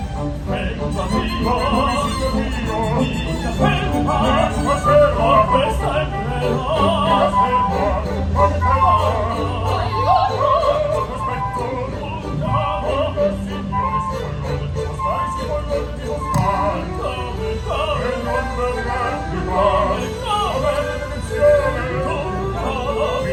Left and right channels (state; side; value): identical; both; correlation 1.00